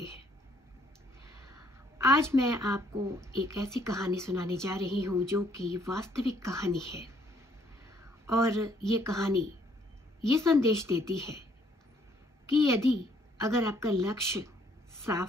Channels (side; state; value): both; normal; correlation 0.65